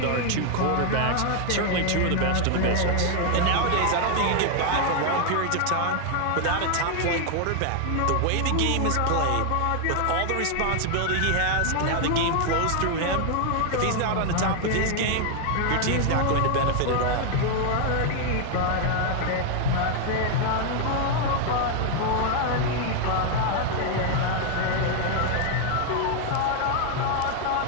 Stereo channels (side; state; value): both; different; correlation 0.00